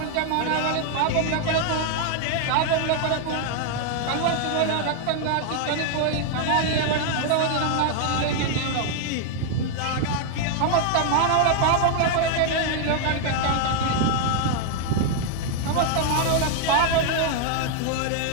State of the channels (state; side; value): different; both; correlation 0.00